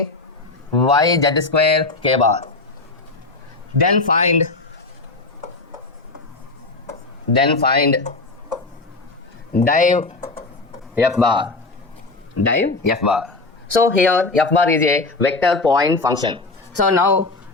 3yz square k bar, then find div f bar. Div f bar. So here f bar is a vector point function. So now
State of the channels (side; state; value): right; quieter; 3.4 dB